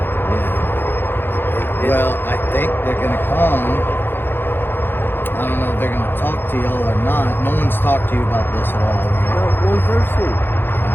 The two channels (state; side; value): late; right; 0.10 ms